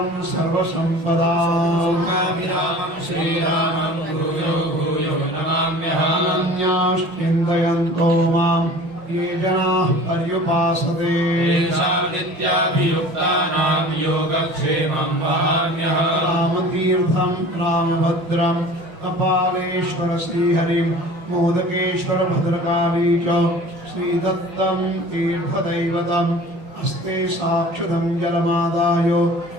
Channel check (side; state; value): left; late; 5.6 ms